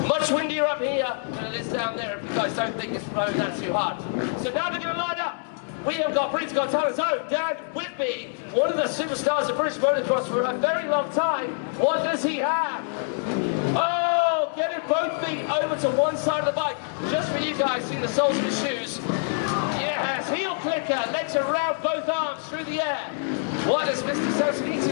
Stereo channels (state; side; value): silent; right; digital silence